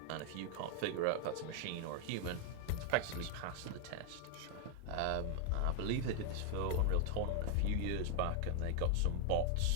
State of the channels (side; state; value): both; different; correlation 0.00